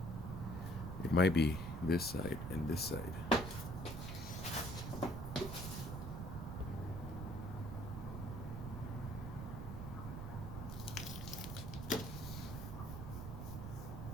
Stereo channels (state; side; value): noise; right; rumble, 6 dB below the sound